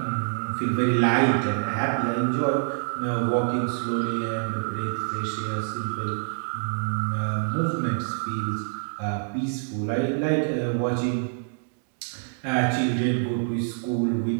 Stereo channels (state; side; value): silent; left; digital silence